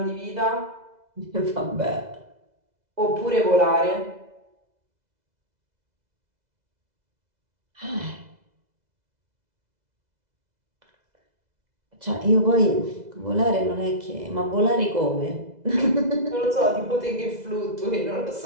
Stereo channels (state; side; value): late; left; 2.0 ms